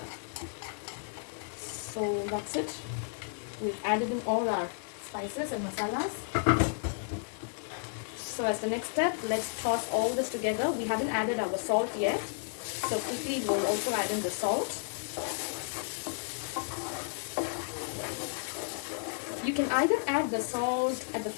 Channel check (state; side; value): silent; right; digital silence